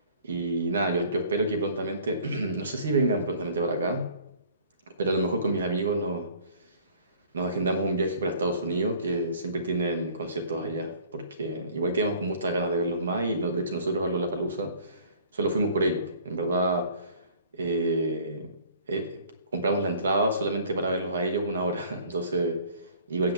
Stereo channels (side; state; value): both; inverted; correlation -0.52